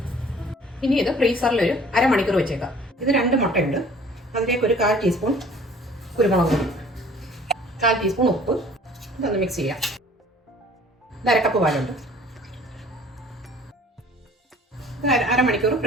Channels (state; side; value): normal; both; correlation 0.52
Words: ഇനി ഇത് ഫ്രീസറിൽ ഒരു അരമണിക്കൂർ വെച്ചേക്കാം. ഇത് 2 മുട്ടയുണ്ട്. അതിലേക്ക് ഒരു 1/4 ടീസ്പൂൺ കുരുമുളക് പൊടി, 1/4 ടീസ്പൂൺ ഉപ്പ്, ഇതൊന്ന് മിക്സ് ചെയ്യാം. ഇത് 1/2 കപ്പ് പാലുണ്ട്. ഇത് അരമണിക്കൂർ